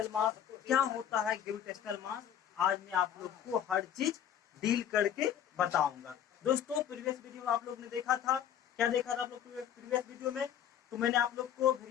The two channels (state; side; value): quieter; right; 9.7 dB